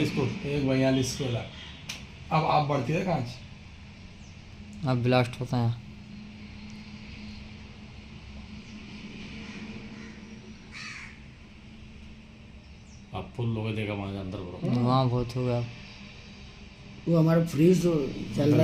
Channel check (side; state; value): both; identical; correlation 1.00